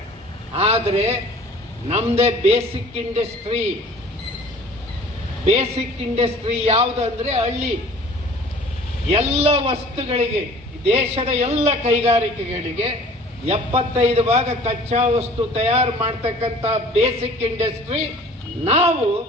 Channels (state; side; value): normal; both; correlation 0.48